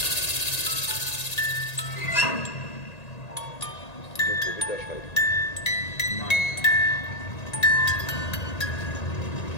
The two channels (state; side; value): late; right; 1.8 ms